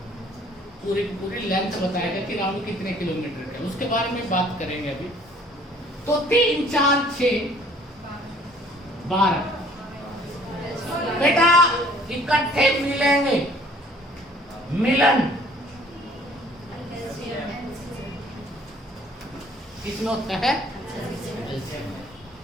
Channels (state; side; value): normal; both; correlation 0.56